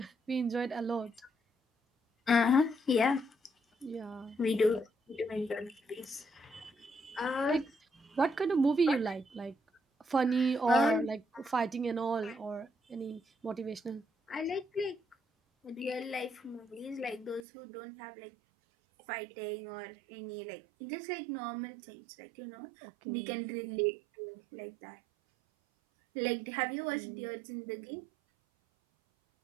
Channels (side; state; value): left; drops out; at 17.4 s